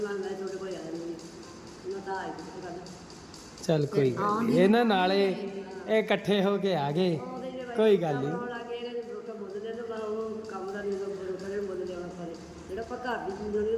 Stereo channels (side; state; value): both; identical; correlation 1.00